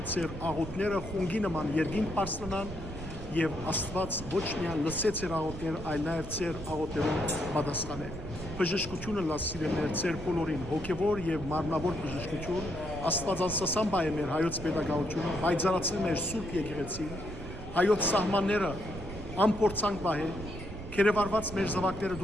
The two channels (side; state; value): right; noise; rumble, 10 dB below the sound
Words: ձեր աղոթները խունգի նման երկինք բարձրանան եւ Աստված ոչ միայն լսեց ձեր աղոթները, այլ նաեւ ձեր աղոթներուն պատասխանե։ Բժշկությունը լավ սիրելիներ ձեր բոլորին, հոգեվոր եւ մարմնավոր բժշկություն, Աստվածածասան բայ է մեր հայոց պետագաղությունը, բայցարացնել մեր սուրբ եկեղեցին, հայոց սահմանները ամփորձանք բայ է, քերեվարված մեր զավակները